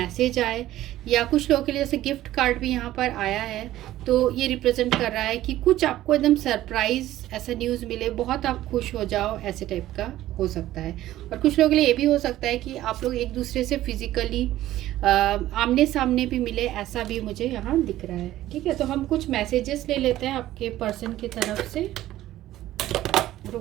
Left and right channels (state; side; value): quieter; left; 14.4 dB